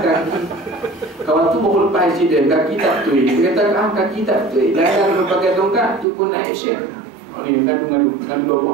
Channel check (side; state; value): left; drops out; at 6.1 s